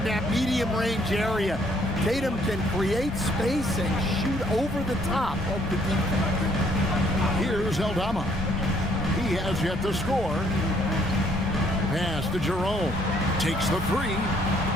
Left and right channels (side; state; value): both; normal; correlation 0.65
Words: that medium range area. Tatum can create space and shoot over the top of the defense. Here's Aldama. He has yet to score. Pass to Jerome. Takes the 3.